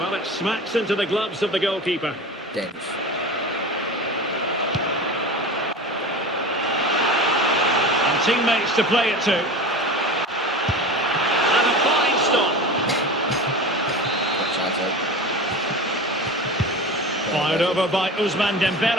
Well, it smacks into the gloves of the goalkeeper. Dangerous. And teammates to play it to. And a fine stop. Fired over by Ousmane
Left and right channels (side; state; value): both; normal; correlation 0.32